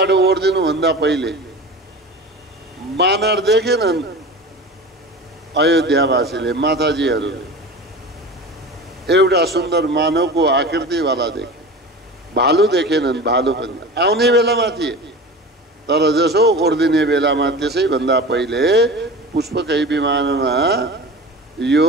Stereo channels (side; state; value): both; normal; correlation 0.33